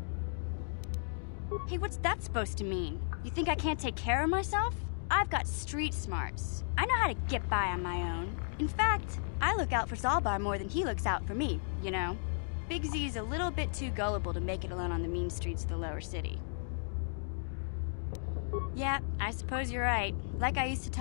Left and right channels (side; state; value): right; silent; digital silence